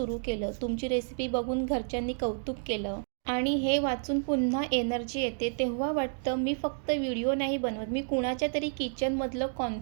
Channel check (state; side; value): silent; left; digital silence